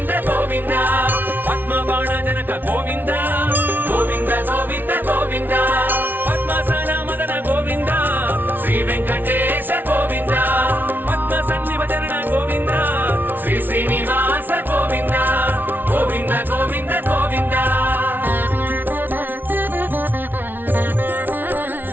గోవింద పద్మ బాణ జనక గోవింద గోవింద గోవింద గోవింద పద్మాసన మదన గోవింద శ్రీ వెంకటేశ గోవింద పద్మ సన్నిభజన గోవింద శ్రీ శ్రీనివాస గోవింద గోవింద గోవింద గోవింద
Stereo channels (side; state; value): left; late; 0.090 ms